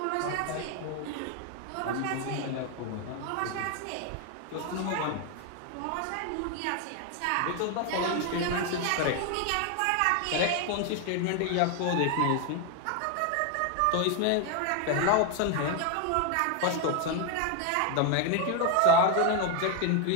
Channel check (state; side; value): different; both; correlation 0.01